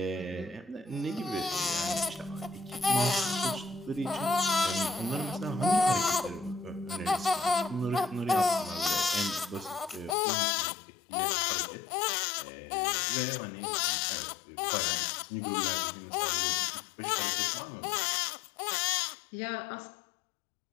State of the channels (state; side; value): drops out; right; at 10.2 s